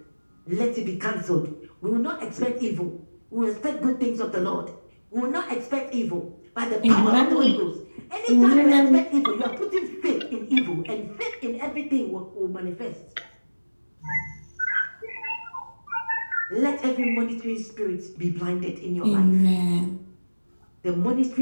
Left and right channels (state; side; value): inverted; both; correlation -1.00